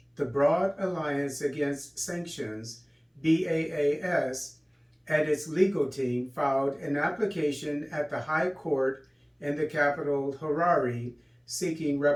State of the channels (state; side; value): identical; both; correlation 1.00